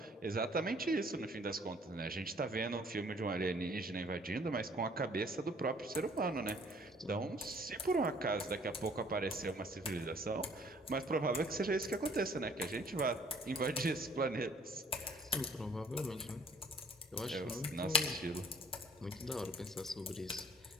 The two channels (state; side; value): normal; both; correlation 0.58